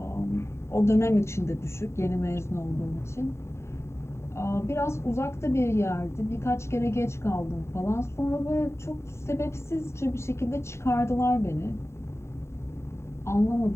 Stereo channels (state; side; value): late; right; 0.13 ms